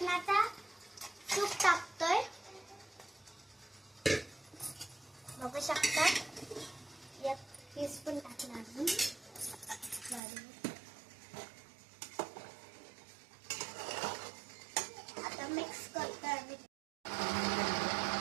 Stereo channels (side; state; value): left; drops out; at 10.2 s